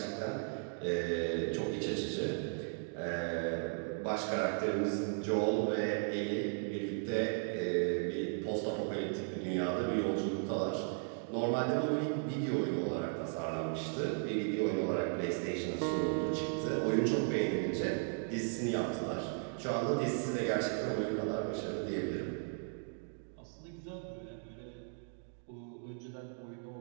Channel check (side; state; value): left; silent; 54 dB below the other